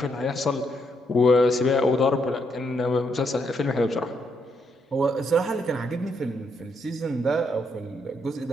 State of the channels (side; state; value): both; normal; correlation 0.76